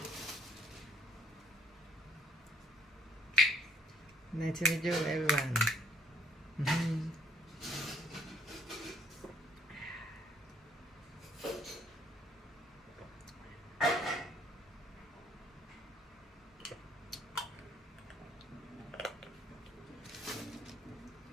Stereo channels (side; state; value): both; normal; correlation 0.63